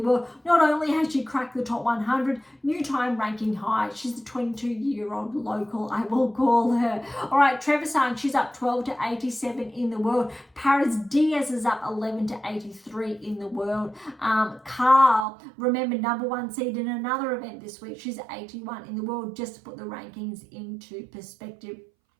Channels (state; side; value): drops out; left; at 15.2 s